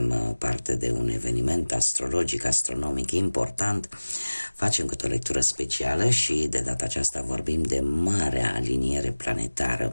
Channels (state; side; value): inverted; both; correlation -1.00